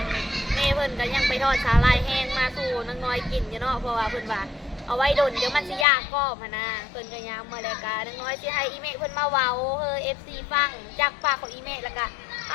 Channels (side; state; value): right; drops out; at 5.9 s